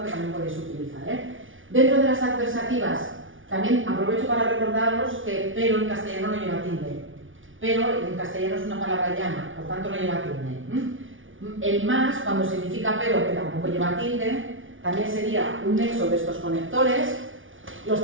que también podéis utilizar. Dentro de las adversativas, también aprovecho para recordaros que pero en castellano no lleva tilde. Pero en castellano es una palabra llana, por tanto no lleva tilde. El más, cuando significa pero, que tampoco lleva tilde, también sería un nexo de estos conectores. Los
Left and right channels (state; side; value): late; left; 0.57 ms